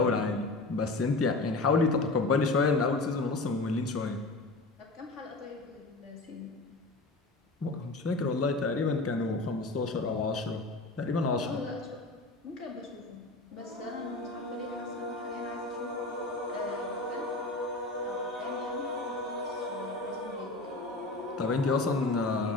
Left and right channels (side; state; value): right; quieter; 3.1 dB